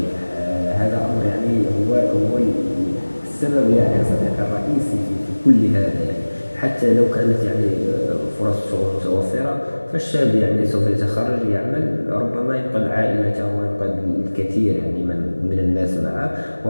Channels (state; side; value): inverted; both; correlation -1.00